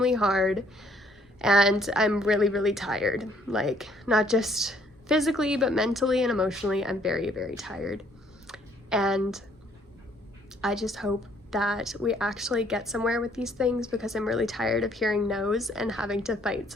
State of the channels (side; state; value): both; normal; correlation 0.64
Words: hard, and I'm really, really tired. Like, not just physically, but mentally and emotionally, I'm very, very tired. And I just hope that we actually get somewhere with these things, because I'm really tired of hearing no's and having to fight